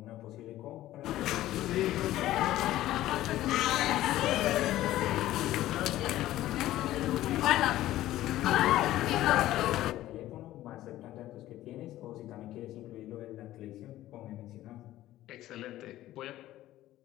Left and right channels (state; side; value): quieter; right; 14.7 dB